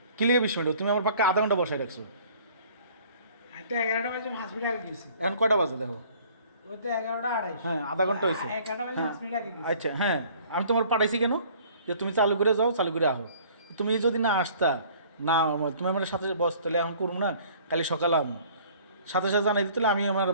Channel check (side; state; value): both; inverted; correlation -0.53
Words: কি লিখে 20 মিনিট? তুমি আমার পাক্কা আধা ঘন্টা বসায় রাখছো। আমি তো 11টা বাজে 5 মিনিট আগে গেছি। এখন কটা বাজে দেখো? ওই তো 11:28। হ্যাঁ আধা ঘন্টা হয়েছে। 11টা বাজে 5 মিনিট আগে গেছি। আচ্ছা হ্যাঁ আমি তোমার পাঠাইছি কেন যে তুমি চালু করে যাও, চালু করে আহো। তুমি যদি না আসতা না তুমি আমার সাথে বস, তাহলে এখন করুন না, কালি সকালে আমি সাথে সাথে জানাই দিতে, আমি আমার